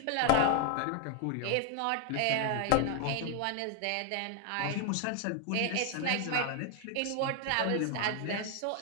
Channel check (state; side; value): different; both; correlation 0.00